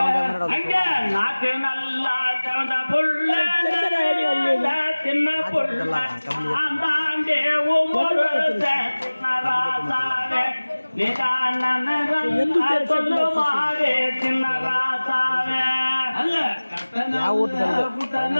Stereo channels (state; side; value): inverted; both; correlation -1.00